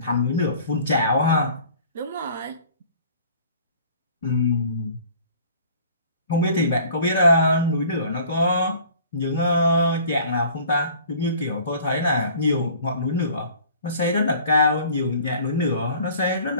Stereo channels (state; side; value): inverted; both; correlation -0.50